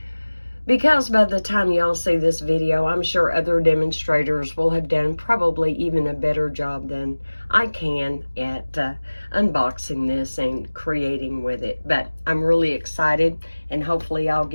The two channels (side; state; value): both; inverted; correlation -1.00